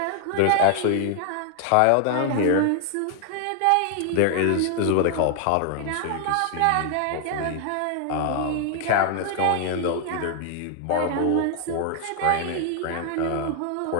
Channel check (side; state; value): both; different; correlation 0.00